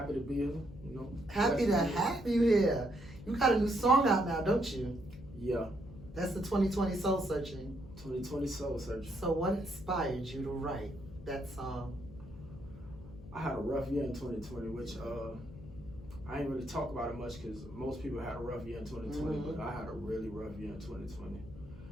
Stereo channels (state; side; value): noise; left; hum, 17 dB below the sound